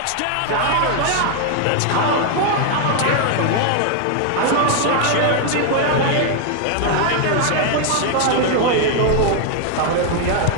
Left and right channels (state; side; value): different; both; correlation 0.01